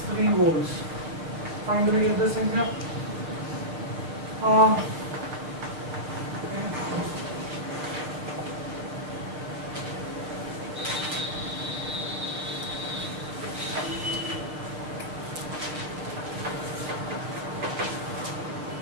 volts. Find the way of this in here.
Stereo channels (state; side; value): late; left; 6.8 ms